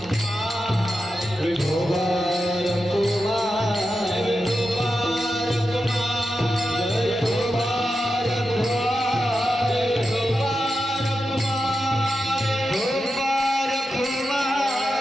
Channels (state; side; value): normal; both; correlation 0.89